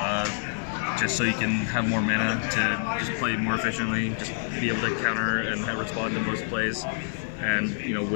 just so you can have more mana to just play more efficiently, just be able to counter and respond to most plays. And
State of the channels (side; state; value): right; silent; 60 dB below the other